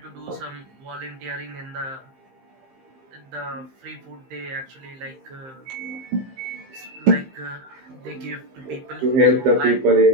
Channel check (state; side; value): late; left; 15 ms